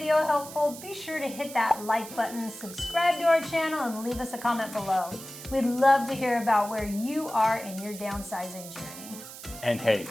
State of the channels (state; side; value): noise; right; hiss, 13 dB below the sound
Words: helpful, be sure to hit that like button, subscribe to our channel, and leave us a comment below. We'd love to hear about where you are in your downsizing journey. And hey,